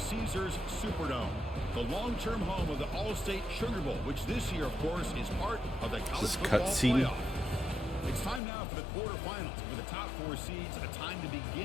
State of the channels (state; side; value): drops out; right; at 8.4 s